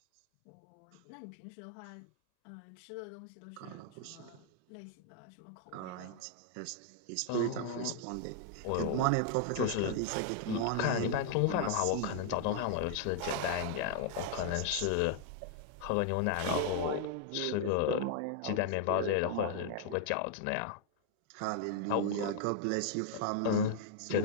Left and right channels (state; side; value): different; both; correlation -0.01